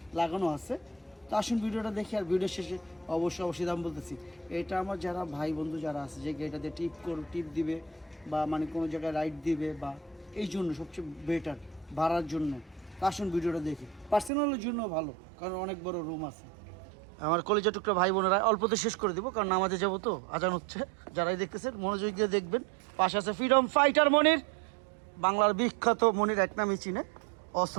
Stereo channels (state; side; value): drops out; left; at 14.3 s